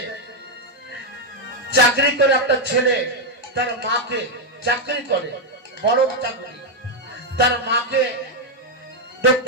চাকরি করে একটা ছেলে তার মাকে, চাকরি করে বড় চাকরি, তার মাকে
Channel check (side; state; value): both; normal; correlation 0.01